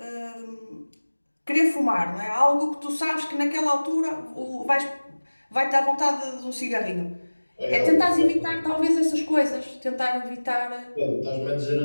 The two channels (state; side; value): inverted; both; correlation -1.00